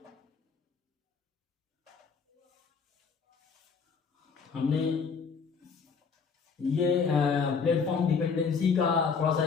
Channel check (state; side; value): quieter; right; 5.5 dB